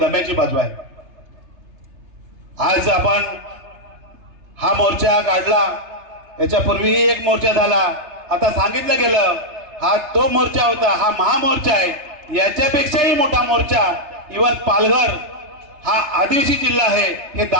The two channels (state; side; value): late; left; 3.3 ms